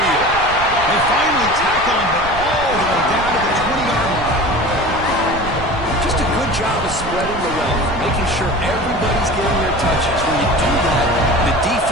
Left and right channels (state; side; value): noise; right; rumble, 11 dB below the sound